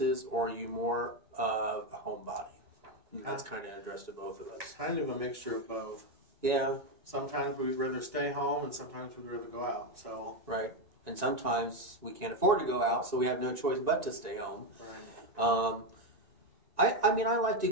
or are you more of a homebody? That's kind of addressed to both of us. Kind of a mixture of both. Yeah. Sometimes we'd rather stay home, and sometimes we'd rather go out. So. Right. And sometimes we can't afford to go out, so we have no choice but to stay home. Right. I mean, I like to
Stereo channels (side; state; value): left; late; 1.9 ms